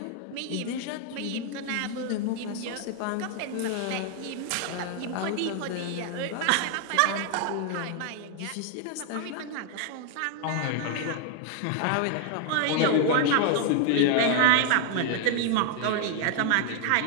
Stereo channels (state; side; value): different; both; correlation 0.00